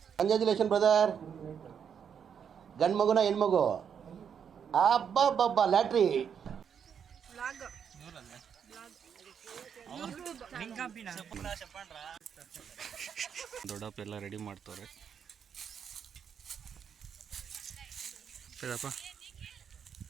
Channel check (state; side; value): quieter; left; 7.6 dB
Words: ಕಂಗ್ರ್ಯಾಚುಲೇಷನ್ ಬ್ರದರ್. ಗಂಡು ಮಗುನ ಹೆಣ್ಮಗು? ಅಬ್ಬಬ್ಬಬ್ಬ, ಲ್ಯಾಟ್ರಿ. ದೊಡ್ಡಪ್ಪ ಎಲ್ಲ ರೆಡಿ ಮಾಡ್ತವ್ರೆ.